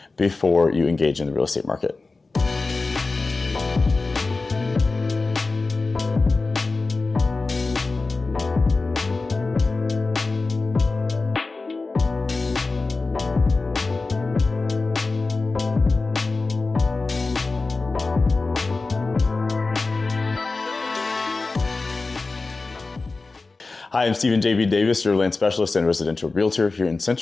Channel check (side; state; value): right; quieter; 3.7 dB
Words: before you engage in the real estate market. Hi, I'm Stephen J.B. Davis, your land specialist and residential realtor here in